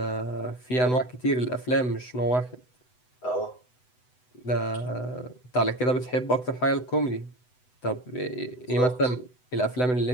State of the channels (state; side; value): late; right; 8.0 ms